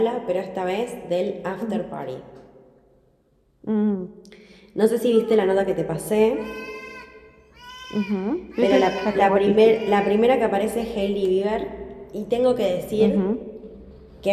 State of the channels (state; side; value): identical; both; correlation 1.00